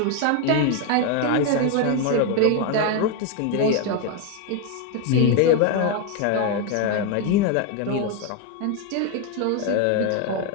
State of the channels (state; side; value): different; both; correlation 0.01